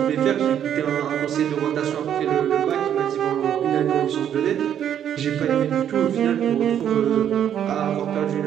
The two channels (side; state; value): left; quieter; 9.6 dB